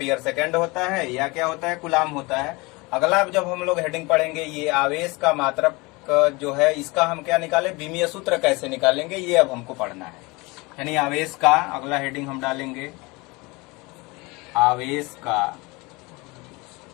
सेकंड होता है, या क्या होता है, कूलाम होता है। अगला जब हम लोग हेडिंग पढ़ेंगे ये आवेश का मात्रक जो है इसका हम क्या निकाले, विमीय सूत्र कैसे निकालेंगे, ये अब हमको पढ़ना है। यानी आवेश का अगला हेडिंग हम डालेंगे आवेश का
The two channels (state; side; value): quieter; right; 25.0 dB